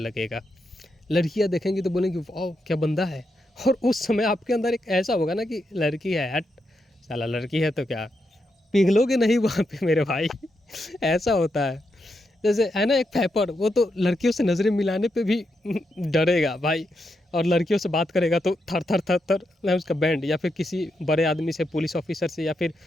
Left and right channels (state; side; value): normal; both; correlation 0.83